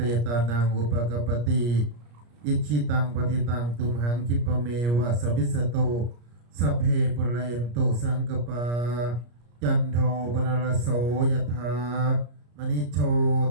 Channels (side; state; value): left; late; 34 ms